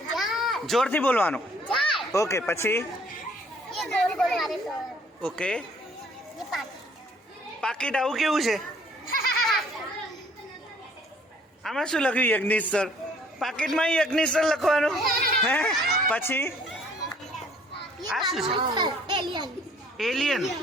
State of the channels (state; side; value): normal; both; correlation 0.58